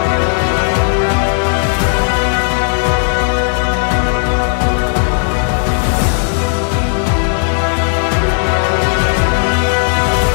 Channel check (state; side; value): silent; right; 67 dB below the other